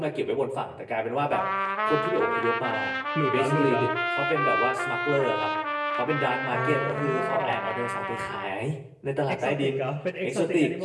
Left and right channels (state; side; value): identical; both; correlation 1.00